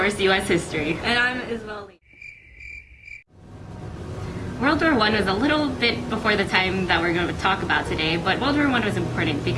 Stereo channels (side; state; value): both; identical; correlation 1.00